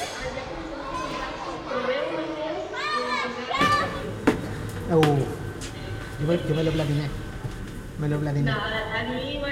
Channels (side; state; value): both; identical; correlation 1.00